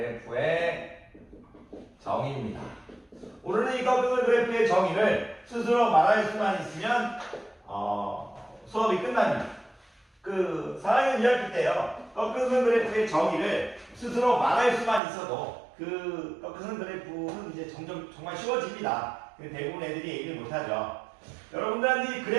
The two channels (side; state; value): left; drops out; at 15.0 s